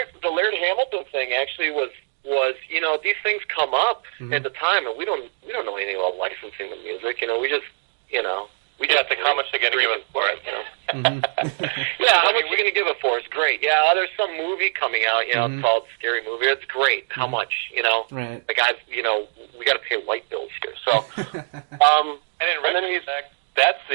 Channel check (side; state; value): left; silent; digital silence